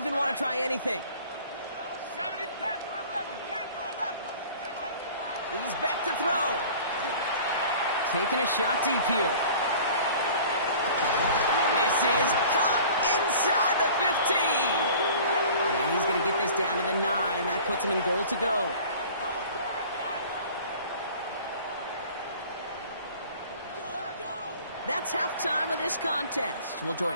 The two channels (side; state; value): both; inverted; correlation -0.45